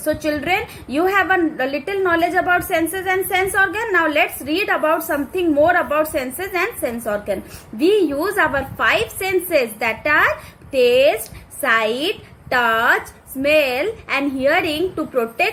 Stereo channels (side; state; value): both; identical; correlation 1.00